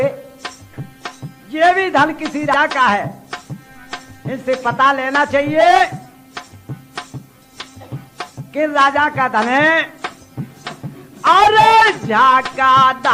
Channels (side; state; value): both; identical; correlation 1.00